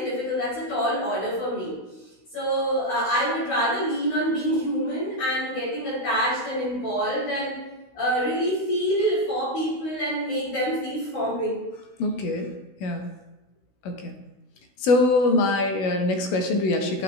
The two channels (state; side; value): late; right; 16 ms